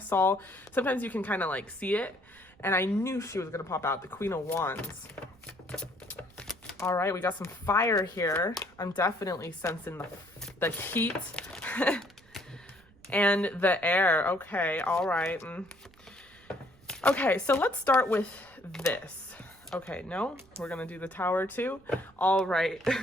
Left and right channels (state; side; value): noise; right; rumble, 28 dB below the sound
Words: saw, sometimes you can kind of like see it. And I knew she was going to pop out. The Queen of Wands. All right. We got some fire here. I'm definitely sensing the heat and the air. Okay. All right. Okay, so let's start with this. Okay, no, we're gonna do the Tower too. All right.